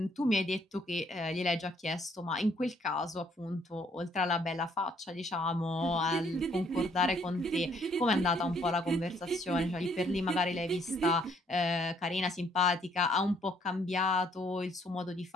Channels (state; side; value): normal; both; correlation 0.66